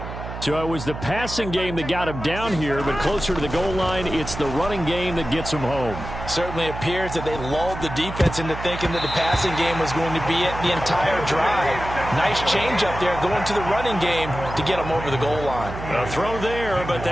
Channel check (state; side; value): noise; right; hum, 9 dB below the sound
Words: So it was the passing game that got him down here, but closer to the goal line, it's the running game that gets him home. Certainly appears that they lulled the defense into thinking that the passing game was going to be it the entire drive. Nice change up there going to the running game to get them over the goal line. A throw there, but